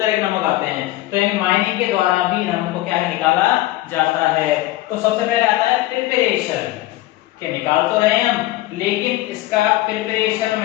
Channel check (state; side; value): quieter; right; 16.8 dB